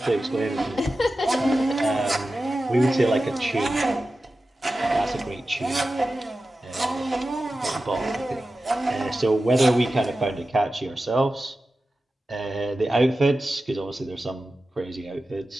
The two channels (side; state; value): both; normal; correlation 0.94